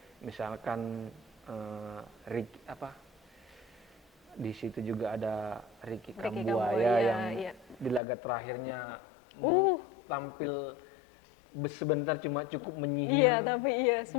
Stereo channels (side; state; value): right; drops out; at 8.0 s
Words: misalkan di situ juga ada Ricky Ricky Kambuaya Kambuaya, yang iya. di laga terakhirnya tampil sebentar cuma cukup menyihir. Iya, tapi iya